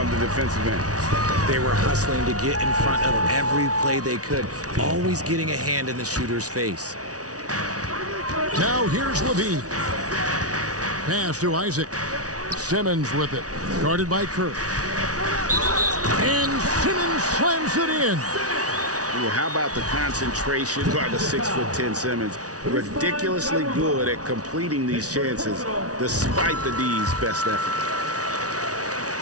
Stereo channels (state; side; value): late; left; 0.68 ms